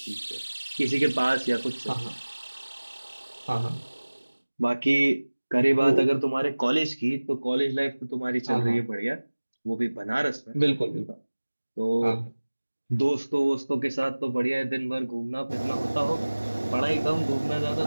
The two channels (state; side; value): inverted; both; correlation -1.00